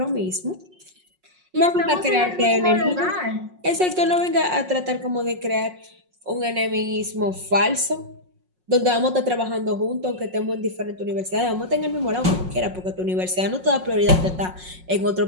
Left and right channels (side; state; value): left; late; 5.5 ms